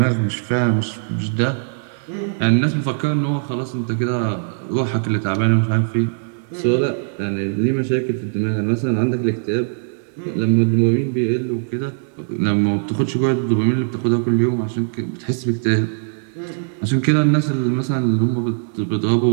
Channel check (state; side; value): silent; left; digital silence